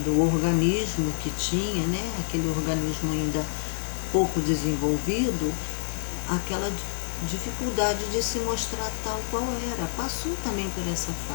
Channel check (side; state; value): right; silent; digital silence